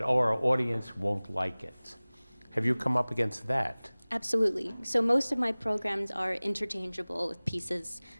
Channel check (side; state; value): both; inverted; correlation -1.00